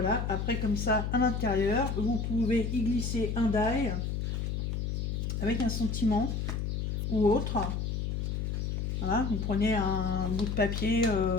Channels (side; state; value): left; noise; hum, 1 dB below the sound